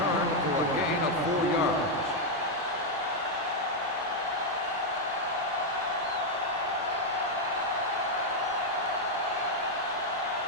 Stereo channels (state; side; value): normal; both; correlation 0.00